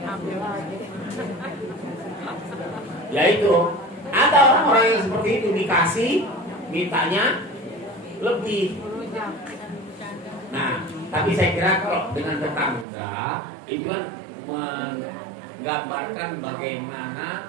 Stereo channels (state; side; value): drops out; left; at 12.9 s